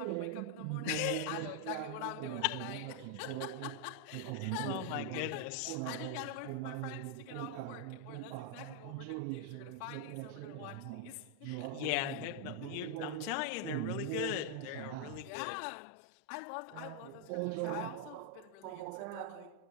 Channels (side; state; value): both; different; correlation 0.00